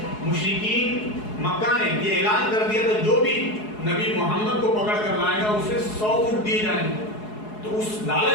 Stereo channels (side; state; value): right; late; 4.7 ms